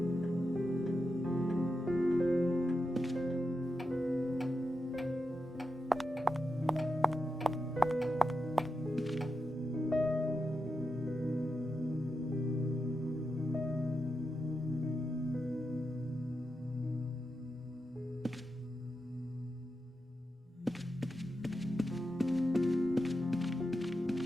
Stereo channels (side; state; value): both; normal; correlation 0.87